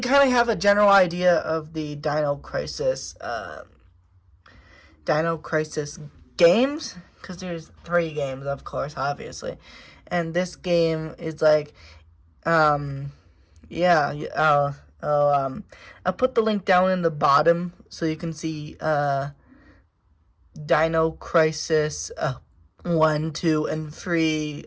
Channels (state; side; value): identical; both; correlation 1.00